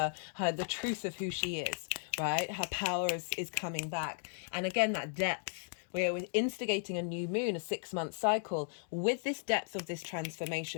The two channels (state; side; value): silent; right; digital silence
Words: the truth of who she is, right? Her power is coming back. And again, that depth. We're instigating a new moon, a 6-month cycle, with this depth of this